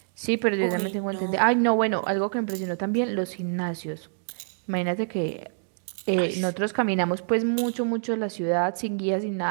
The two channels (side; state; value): left; silent; digital silence